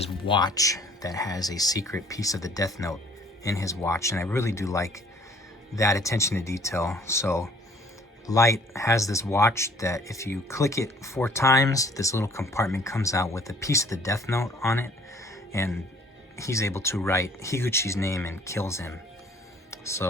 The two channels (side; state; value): both; normal; correlation 0.56